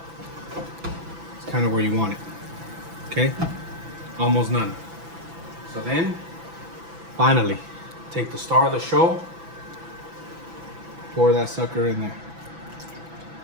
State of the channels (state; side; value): late; left; 6.0 ms